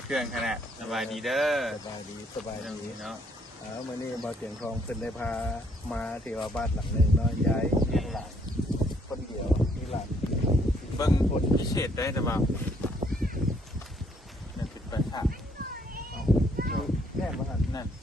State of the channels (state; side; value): normal; both; correlation 0.67